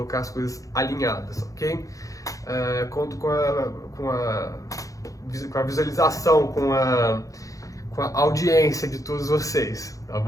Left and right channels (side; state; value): right; late; 0.16 ms